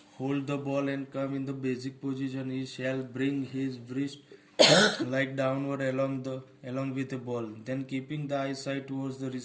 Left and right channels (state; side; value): identical; both; correlation 1.00